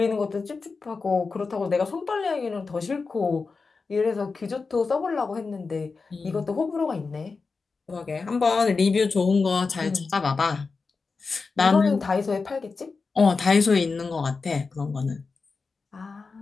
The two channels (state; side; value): quieter; right; 4.4 dB